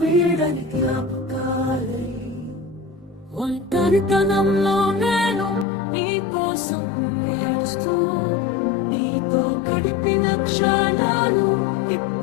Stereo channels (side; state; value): right; drops out; at 5.7 s